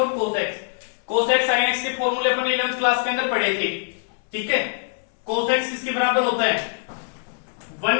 cos x sin x के फॉर्मूले अपन 11th क्लास के अंदर पढ़े थे। ठीक है, cos x इसके बराबर होता है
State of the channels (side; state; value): right; silent; 63 dB below the other